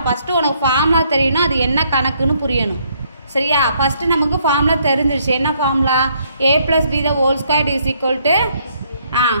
ஃபஸ்ட்டு உனக்கு ஃபார்முலா தெரியணும், அது என்ன கணக்குன்னு புரியணும். சரியா? ஃபஸ்ட்டு நமக்கு ஃபார்முலா தெரிஞ்சிருச்சு. என்ன ஃபார்முலா? a + b ²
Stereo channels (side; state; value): both; inverted; correlation -0.69